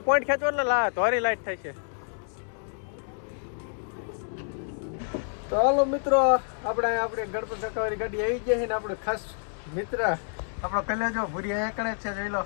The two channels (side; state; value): right; silent; digital silence